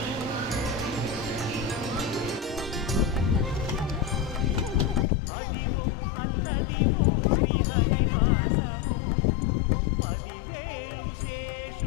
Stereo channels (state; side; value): drops out; right; at 5.1 s